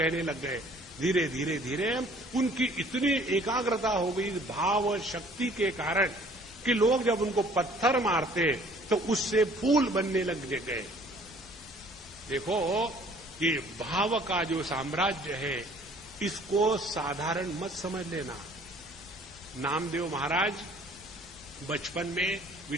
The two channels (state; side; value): normal; both; correlation 0.55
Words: लग गए। धीरे धीरे धीरे उनकी इतनी एकाग्रता हो गई भाव शक्ति के कारण कि लोग जब उनको पत्थर मारते तो उससे फूल बनने लग गए। देखो, ये भाव का जो साम्राज्य है, इसको साधारण मत समझ लेना। नामदेव महाराज बचपन में